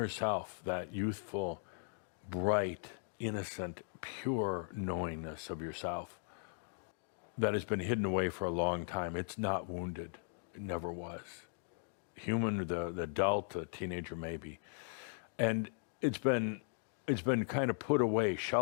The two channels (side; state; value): right; silent; digital silence